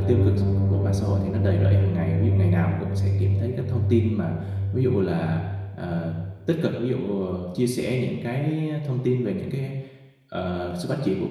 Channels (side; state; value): both; identical; correlation 1.00